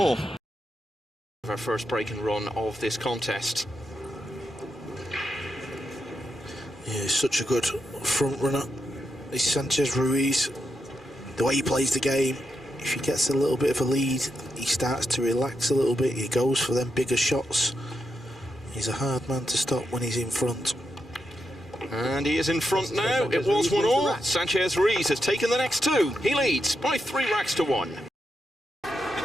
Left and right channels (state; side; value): normal; both; correlation 0.84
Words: Our first break and run of this contest. Yeah, he's such a good front runner. He's Sanchez Ruiz. The way he plays the game, if he gets a little bit of a lead, he starts to relax a little bit. He goes for them bigger shots. He's a hard man to stop when he's in front. And he is in front now. It was 1-all. Sanchez Ruiz has taken the next 2. He leads by 3 racks to 1.